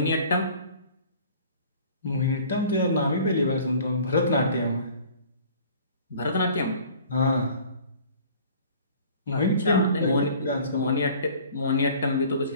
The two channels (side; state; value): both; inverted; correlation -0.49